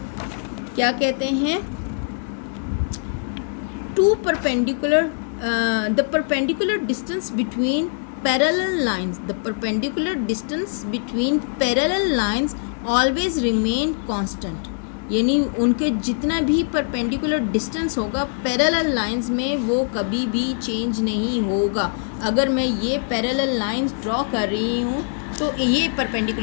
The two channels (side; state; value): right; silent; digital silence